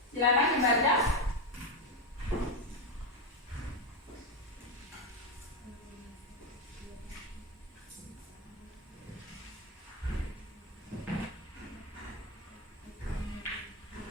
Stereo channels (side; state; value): both; normal; correlation 0.10